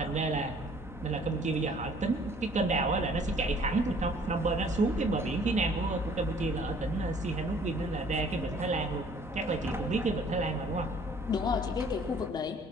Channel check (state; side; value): normal; both; correlation 0.56